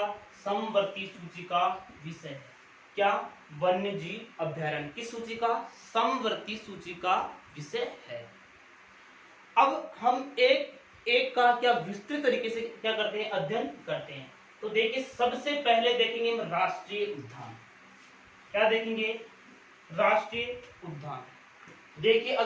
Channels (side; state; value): both; identical; correlation 1.00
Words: समवर्ती सूची का विषय है। क्या? वन्य जीव अभयारण्य किस सूची का? समवर्ती सूची का विषय है। अब हम एक एक का क्या विस्तृत तरीके से क्या करते हैं? अध्ययन करते हैं। तो देखिए, सबसे पहले देखेंगे हम राष्ट्रीय उद्यान। क्या देखेंगे? राष्ट्रीय उद्यान। देखिए,